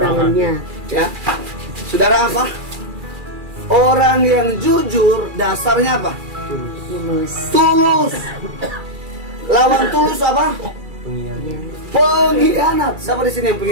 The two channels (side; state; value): left; late; 2.4 ms